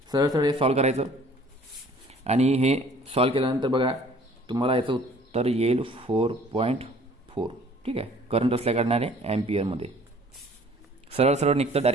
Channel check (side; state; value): both; normal; correlation 0.53